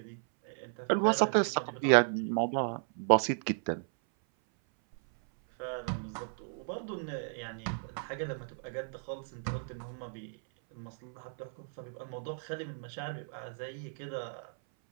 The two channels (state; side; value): silent; left; 55 dB below the other